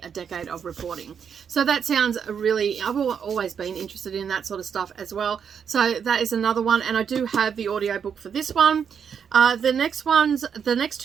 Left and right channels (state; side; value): quieter; left; 7.3 dB